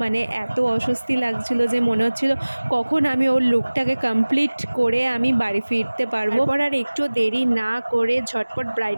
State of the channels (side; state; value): both; inverted; correlation -1.00